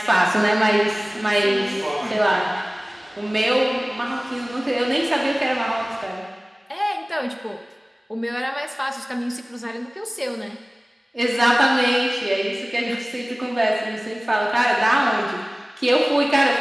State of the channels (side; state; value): both; normal; correlation 0.98